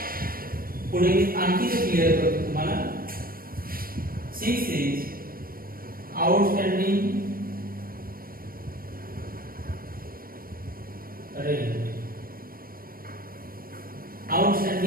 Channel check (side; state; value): left; late; 0.42 ms